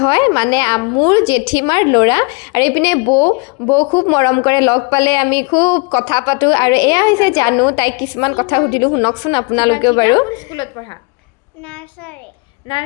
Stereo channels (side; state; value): right; quieter; 32.0 dB